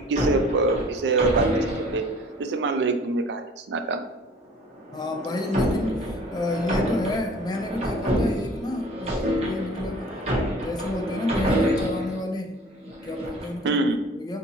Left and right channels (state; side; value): normal; both; correlation 0.48